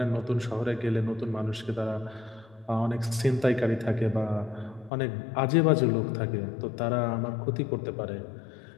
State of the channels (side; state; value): right; drops out; at 4.9 s